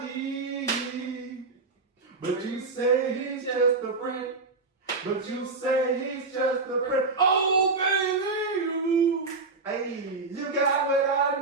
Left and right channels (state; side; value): quieter; left; 3.9 dB